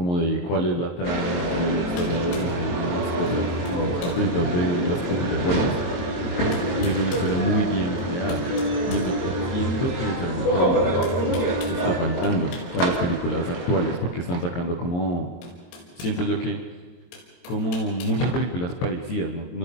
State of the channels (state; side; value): late; right; 22 ms